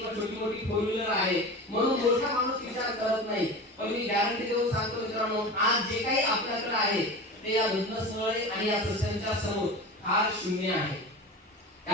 छोटी मोठी फोर व्हीलर आहे, म्हणून मोठा माणूस विचार करत नाही. पण मी गॅरंटी देऊन सांगतो मित्रांनो, आज जे काही आपल्याकडे आहे ते या घटनास्थळी आणि या सत्संगाच्या समोर फार शून्य आहे.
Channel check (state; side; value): normal; both; correlation 0.31